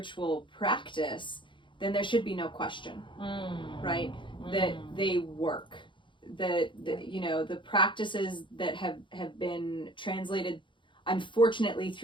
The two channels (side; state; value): right; late; 0.23 ms